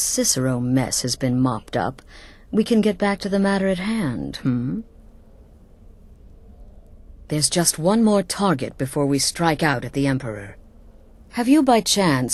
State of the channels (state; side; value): identical; both; correlation 1.00